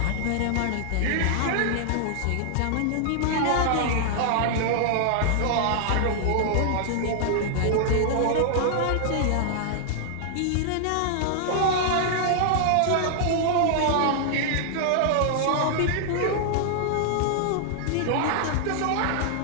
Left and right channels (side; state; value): both; different; correlation -0.01